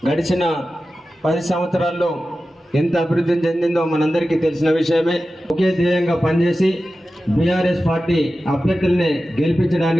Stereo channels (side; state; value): both; normal; correlation 0.94